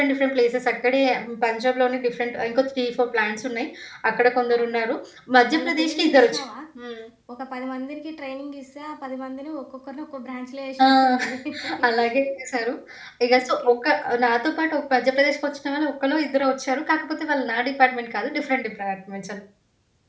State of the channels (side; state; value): both; identical; correlation 1.00